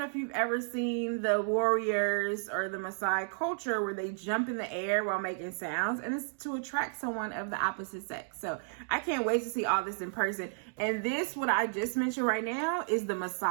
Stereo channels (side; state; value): left; silent; digital silence